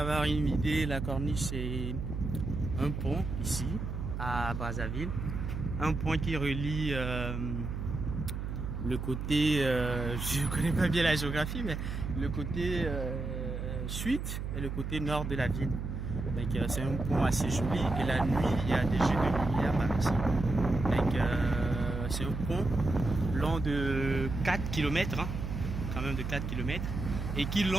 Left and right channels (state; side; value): noise; right; hum, 4 dB below the sound